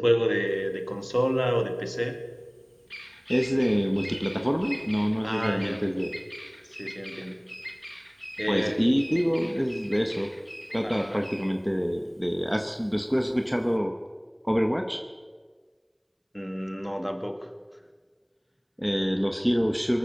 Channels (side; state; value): both; identical; correlation 1.00